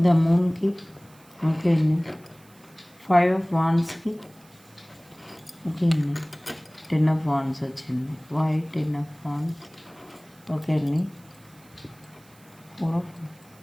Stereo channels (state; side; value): noise; right; hiss, 28 dB below the sound